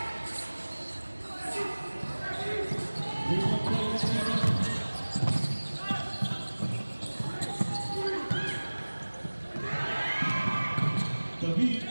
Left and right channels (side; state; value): both; inverted; correlation -1.00